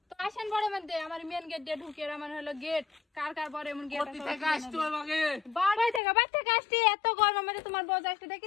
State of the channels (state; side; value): drops out; right; at 6.0 s